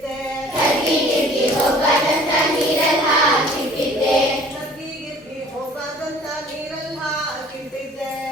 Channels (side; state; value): both; normal; correlation 0.51